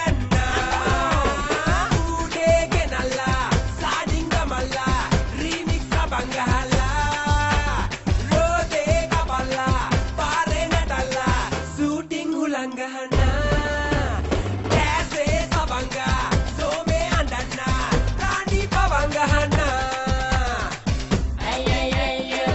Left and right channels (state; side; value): identical; both; correlation 1.00